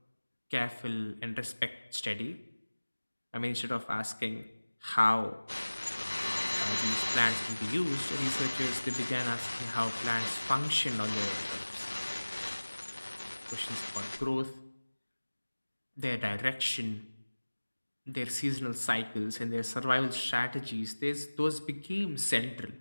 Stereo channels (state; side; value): inverted; both; correlation -1.00